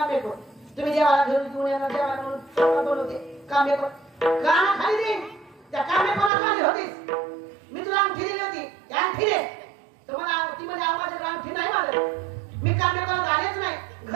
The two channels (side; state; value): left; drops out; at 6.3 s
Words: कोण? तुम्ही देवाला घेऊन येणार देवाला म्हणून बोलवते कामे कोण? काना खाली दे. त्या कामे कोणा खाली होतीस? मी तुला अंगठी दिली होती, त्या अंगठी दे. तुम्हाला ती म्हणजे आवाजाची अंगठी नाही मारत. मी कामे कोणाला आलेच नाही,